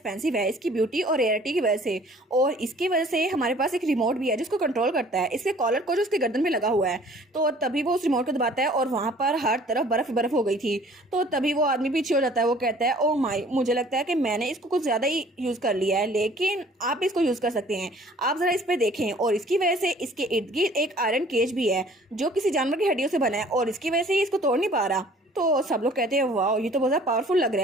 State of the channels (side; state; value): both; normal; correlation 0.53